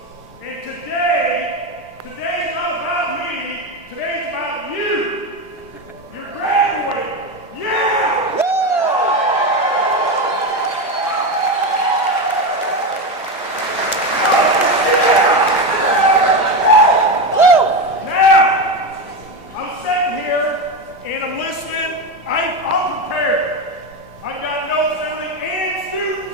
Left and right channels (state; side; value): normal; both; correlation 0.15